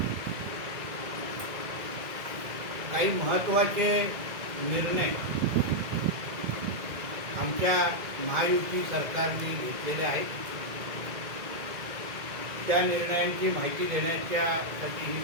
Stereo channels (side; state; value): left; late; 2.0 ms